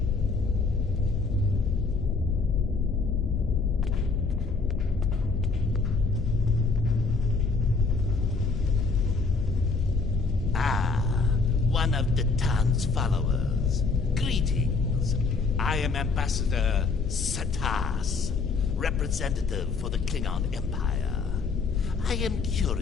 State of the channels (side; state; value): right; quieter; 4.3 dB